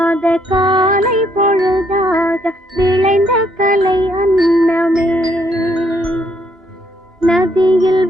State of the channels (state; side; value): normal; both; correlation 0.71